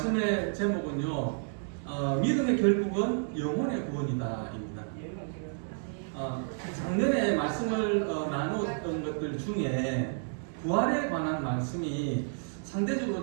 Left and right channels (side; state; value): left; silent; 57 dB below the other